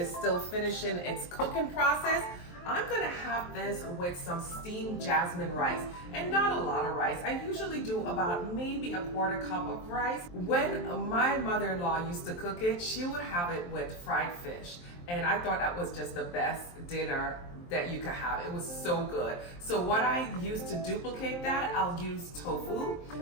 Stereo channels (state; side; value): late; right; 23 ms